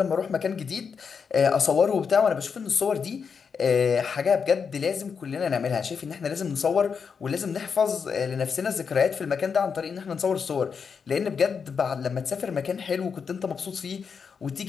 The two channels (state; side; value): quieter; right; 6.1 dB